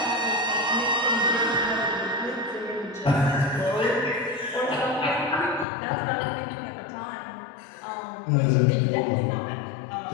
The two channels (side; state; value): right; drops out; at 5.7 s